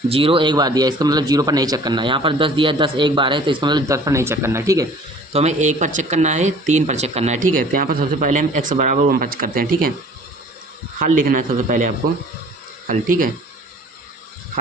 0 1 बार दिया है, इसका मतलब 0 पर नहीं चेक करना है। यहाँ पर 10 दिया है, 10 1 बार है, तो इसका मतलब 10 पर नहीं चेक करना है, ठीक है। तो हमें 1 पर चेक करना है, 3 पर चेक करना है, ठीक है। तो यहाँ पर सबसे पहले हम x बराबर 1 पर करते हैं, ठीक है। हल लिखना है सबसे पहले आपको, हल, ठीक है।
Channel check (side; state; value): both; normal; correlation 0.50